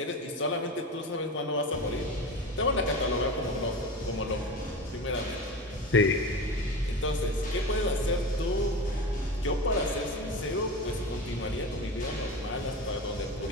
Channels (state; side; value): normal; both; correlation 0.28